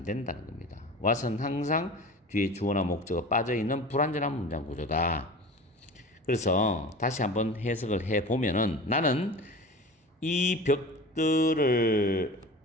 된다는 겁니다. was는 항상 뒤에 주어나 목적어 빠져있는 불완전한 문장 구조다. 그래서 다시 한번 해석을 해보면은 나는 이 벽들을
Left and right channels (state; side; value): normal; both; correlation 0.36